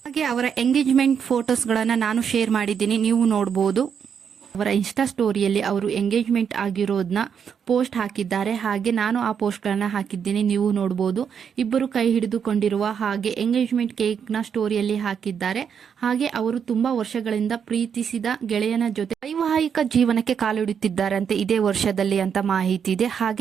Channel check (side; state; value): left; quieter; 7.4 dB